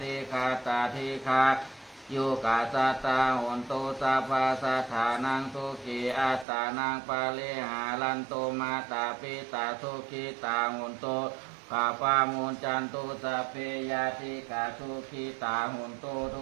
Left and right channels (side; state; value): left; drops out; at 6.5 s